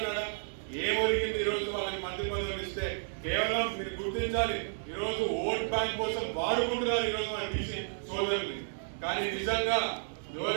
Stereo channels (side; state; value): left; silent; digital silence